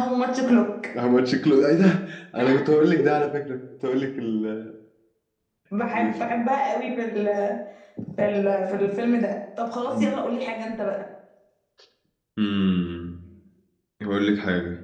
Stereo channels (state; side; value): identical; both; correlation 1.00